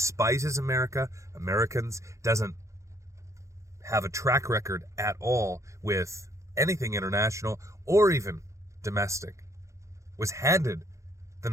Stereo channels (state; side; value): late; left; 0.15 ms